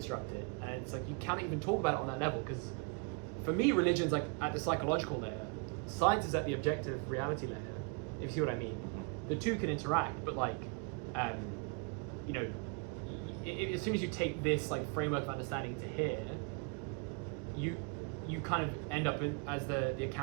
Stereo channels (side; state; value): left; quieter; 33.7 dB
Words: it, and it's like you can't even talk about it on that level, because for me, religion's like at the psychological layer, science is at the objective reality layer, if you see what I mean. The two can interact, but like, you know, as soon as you take this like framework of understanding to here, you kind of end up as the